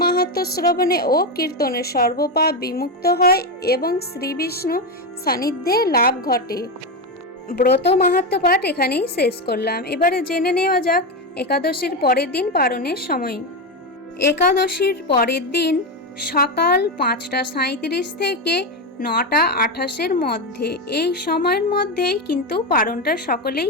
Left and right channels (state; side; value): normal; both; correlation 0.12